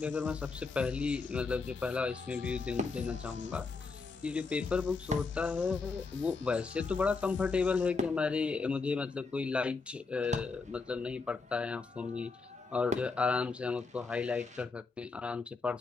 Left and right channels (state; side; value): quieter; right; 4.4 dB